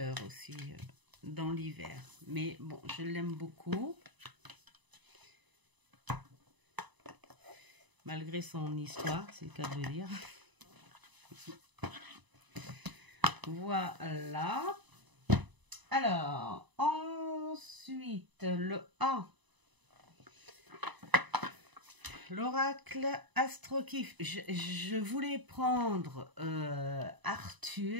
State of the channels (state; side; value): late; left; 1.0 ms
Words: aussi dans l'hiver. Mais bon, je l'aime beaucoup. Malgré son histoire, c'est le cas de le dire. Voilà. Alors, ensuite, le A. L'oracle Astrokif. Je voulais prendre